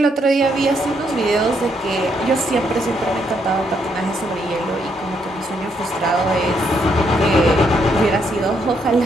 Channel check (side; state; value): both; normal; correlation 0.75